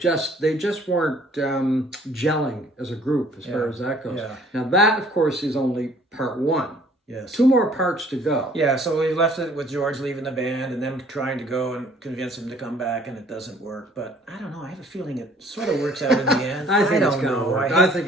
they just weren't gelling as a group as far as that goes. Yeah. Now that, of course, is only part one. Yes. 2 more parts to go. Yeah, so we left it with George leaving the band and them trying to go and convince him to come back, and it doesn't work. But I don't know. I have a feeling it sort of works out in the end. I think it's don't going to know. work. I think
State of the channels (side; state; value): both; normal; correlation 0.57